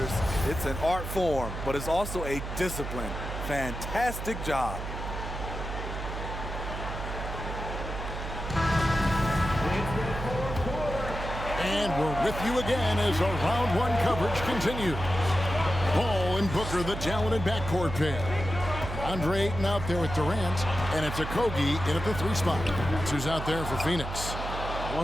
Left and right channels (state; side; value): noise; right; hum, 7 dB below the sound